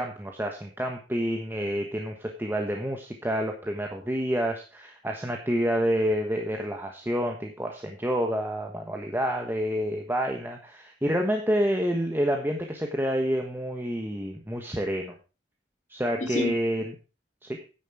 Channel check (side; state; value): both; normal; correlation 0.79